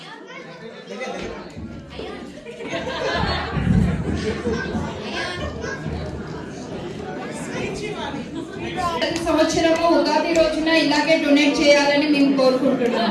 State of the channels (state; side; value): identical; both; correlation 1.00